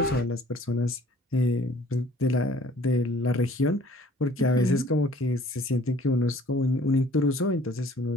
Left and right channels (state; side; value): normal; both; correlation 0.54